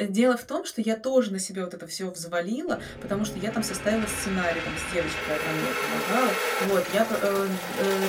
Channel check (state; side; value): identical; both; correlation 1.00